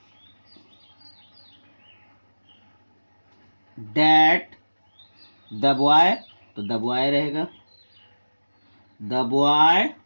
that the boy, तो द बॉय रहेगा, the boy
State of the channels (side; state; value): both; inverted; correlation -1.00